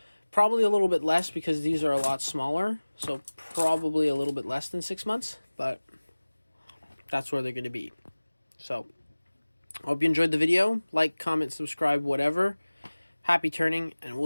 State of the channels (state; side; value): inverted; both; correlation -1.00